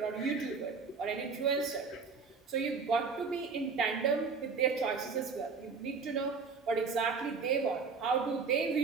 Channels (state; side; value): quieter; left; 5.0 dB